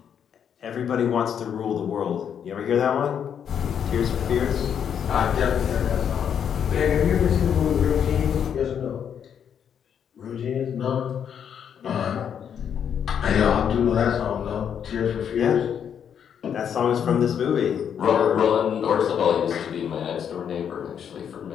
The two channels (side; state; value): right; quieter; 8.2 dB